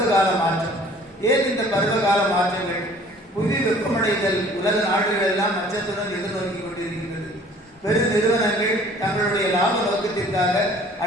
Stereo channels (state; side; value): normal; both; correlation 0.52